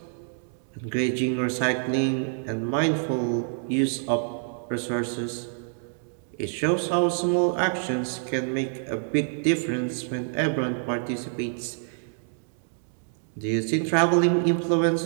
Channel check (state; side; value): silent; left; digital silence